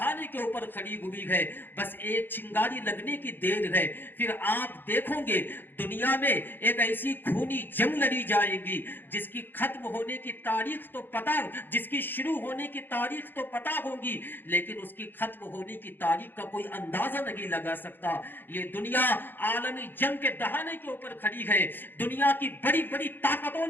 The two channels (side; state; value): right; late; 0.095 ms